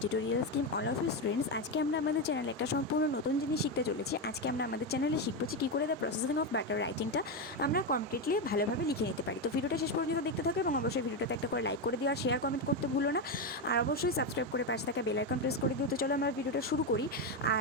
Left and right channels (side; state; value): both; normal; correlation 0.10